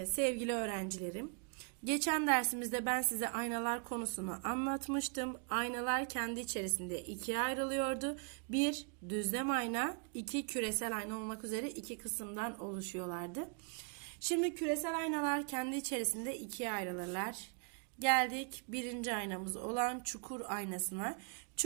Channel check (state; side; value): quieter; left; 39.0 dB